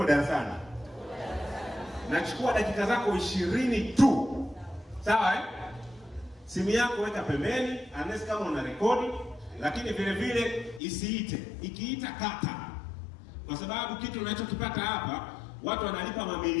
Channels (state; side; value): drops out; right; at 10.8 s